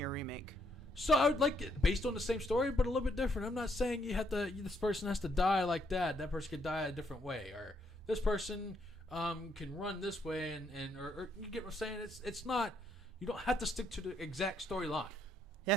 remake? So I would like it based on the same story, but a little bit different. I'm not saying this person has to die like that. That person could die a different way, or this person can run this way, or you get what I'm saying? It's not. You don't have to stick to the exact storyline.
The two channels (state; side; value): normal; both; correlation 0.73